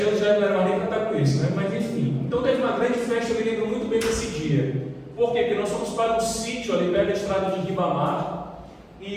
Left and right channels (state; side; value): identical; both; correlation 1.00